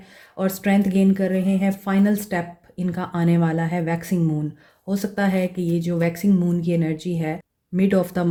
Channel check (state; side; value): identical; both; correlation 1.00